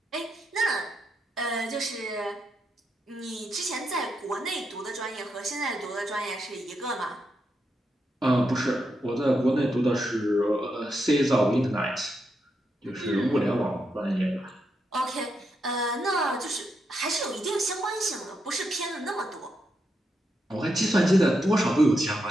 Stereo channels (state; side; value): normal; both; correlation 0.83